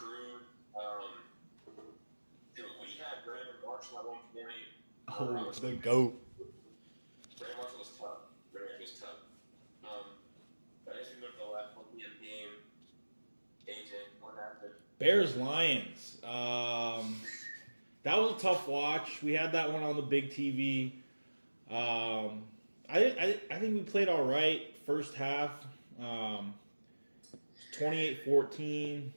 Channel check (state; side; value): inverted; both; correlation -1.00